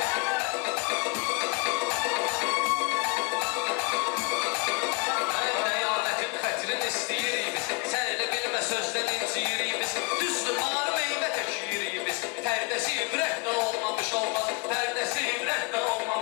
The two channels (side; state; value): right; quieter; 30.4 dB